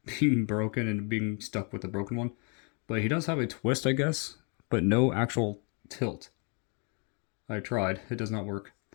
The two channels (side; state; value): right; quieter; 36.5 dB